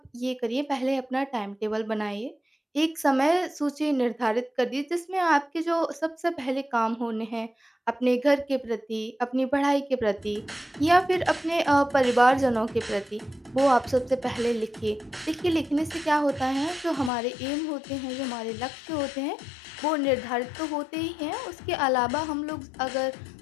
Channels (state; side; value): drops out; right; at 17.1 s